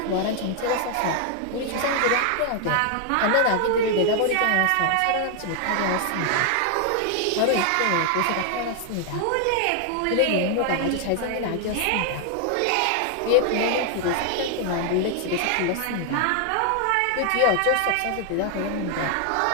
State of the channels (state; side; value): different; both; correlation 0.00